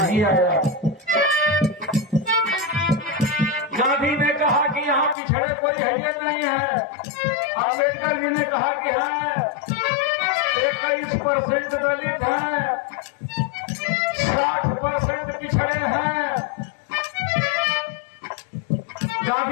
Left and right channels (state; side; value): drops out; right; at 5.2 s